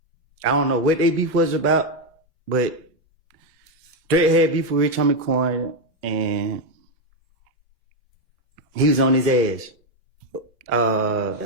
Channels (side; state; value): both; normal; correlation 0.05